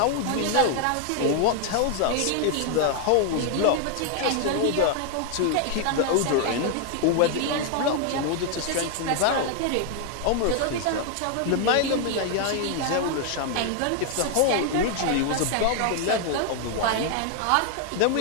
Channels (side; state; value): both; different; correlation 0.00